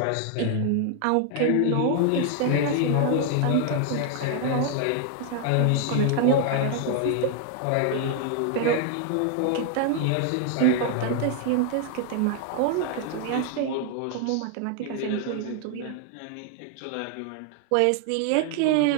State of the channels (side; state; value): both; different; correlation 0.00